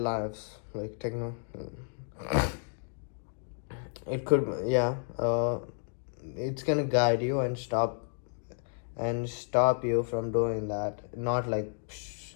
like techno, it could, yeah, it's gonna guide you and stop you from doing that, not like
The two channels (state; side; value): silent; right; 57 dB below the other